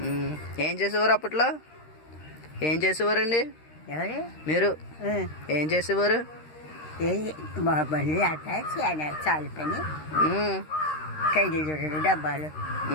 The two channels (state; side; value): late; right; 13 ms